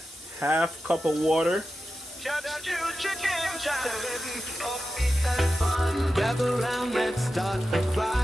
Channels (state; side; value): normal; both; correlation 0.91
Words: half cup of water. Gather round, let's start the